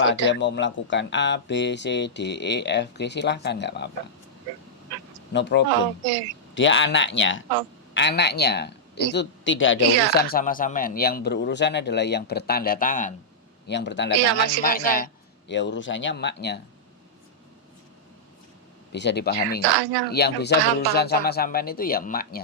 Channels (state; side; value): normal; both; correlation -0.09